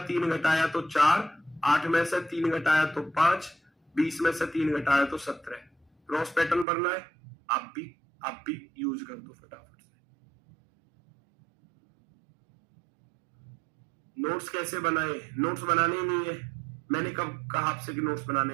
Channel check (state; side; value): drops out; left; at 6.7 s